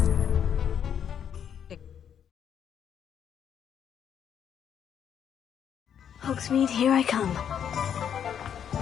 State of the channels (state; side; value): quieter; right; 8.7 dB